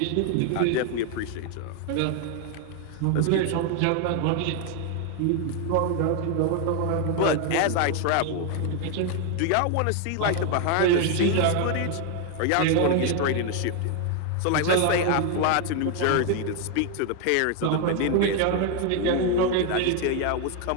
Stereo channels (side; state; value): both; different; correlation 0.01